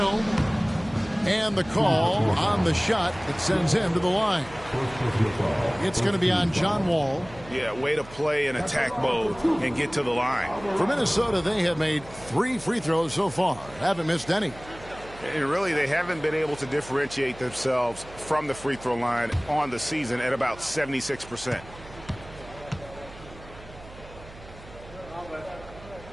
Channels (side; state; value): right; noise; hum, 18 dB below the sound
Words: And the call on the shot that sends him to the line. It's going to be on John Wall. Yeah, way to play in attack mode and get to the line. For Minnesota, they have made 3 free throws so far. Haven't missed any. And really, they haven't been able to differentiate themselves from the free throw line on the season at about 76%.